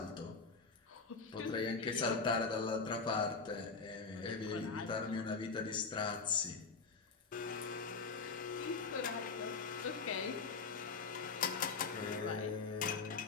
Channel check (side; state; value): right; quieter; 4.6 dB